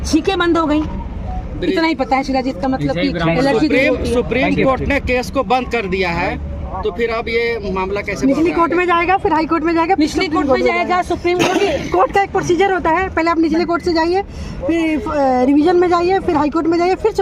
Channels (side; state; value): both; identical; correlation 1.00